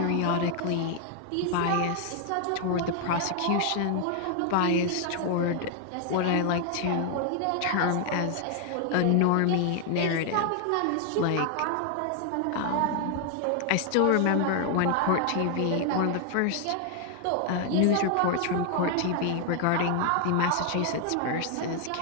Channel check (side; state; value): both; different; correlation 0.00